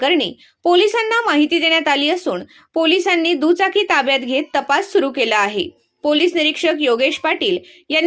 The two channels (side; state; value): both; identical; correlation 1.00